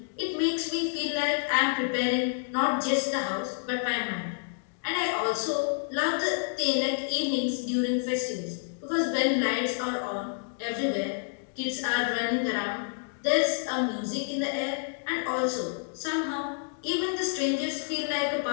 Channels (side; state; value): right; silent; digital silence